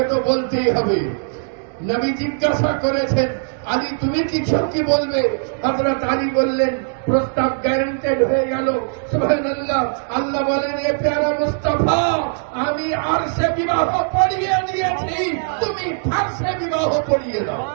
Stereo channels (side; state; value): left; silent; digital silence